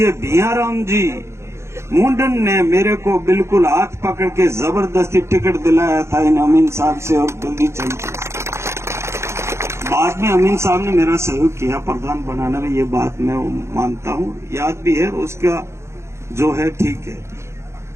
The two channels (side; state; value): left; late; 0.13 ms